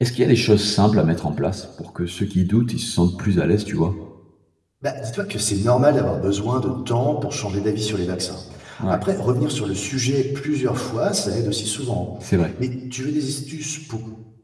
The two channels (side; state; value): both; identical; correlation 1.00